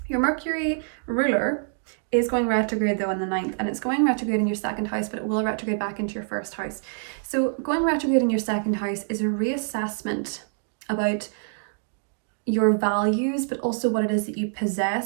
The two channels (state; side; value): silent; left; digital silence